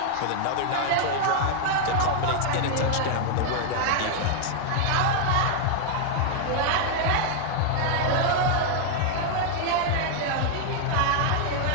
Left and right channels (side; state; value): both; different; correlation 0.00